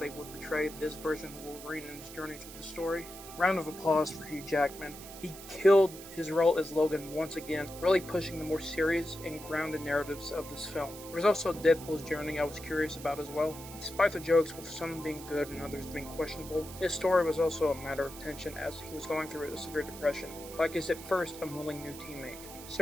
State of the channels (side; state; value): right; noise; hiss, 14 dB below the sound